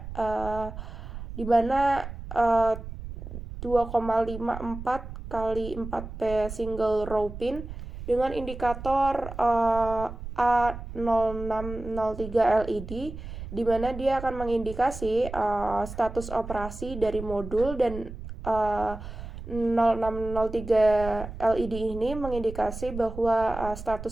dimana 2,54 kali 4P single row pin dengan indikator A0603 LED di mana dia akan mengindikasi status operasi dari modul dan 0603 LED ini mengindikasi bahwa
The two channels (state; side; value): noise; right; rumble, 10 dB below the sound